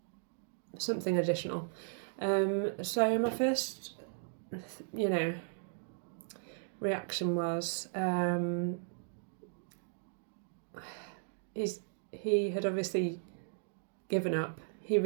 Something additional. So my first, reaction was he had obviously given up. He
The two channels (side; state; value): left; silent; digital silence